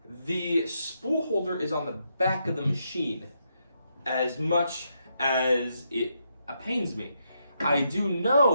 The spool holder is on the back of the machine, as much as it pains me. I do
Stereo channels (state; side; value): inverted; both; correlation -0.80